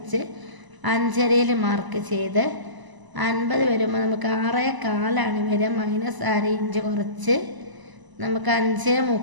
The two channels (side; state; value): left; late; 1.0 ms